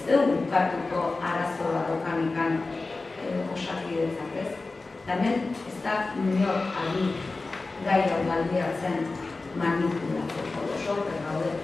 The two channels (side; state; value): right; quieter; 3.5 dB